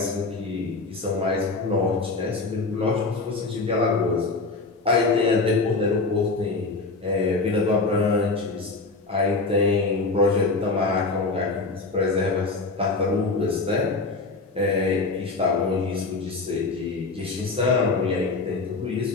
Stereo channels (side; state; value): right; quieter; 3.7 dB